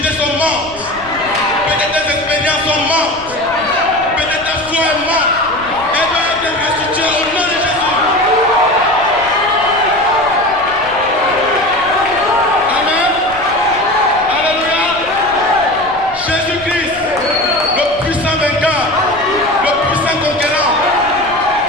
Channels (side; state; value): left; noise; rumble, 20 dB below the sound